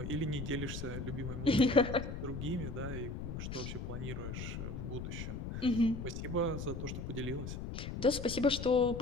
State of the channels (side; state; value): left; noise; rumble, 6 dB below the sound